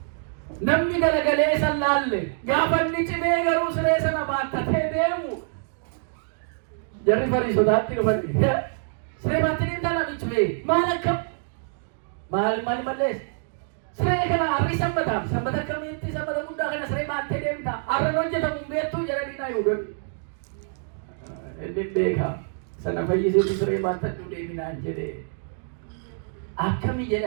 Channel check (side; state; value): left; silent; digital silence